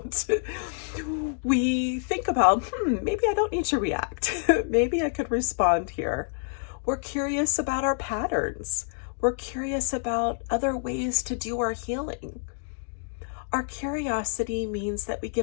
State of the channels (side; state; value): right; silent; digital silence